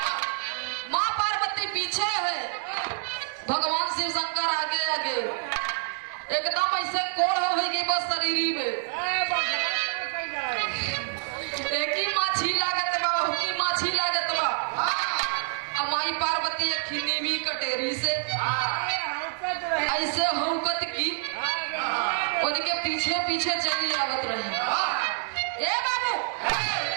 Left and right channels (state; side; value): silent; left; 60 dB below the other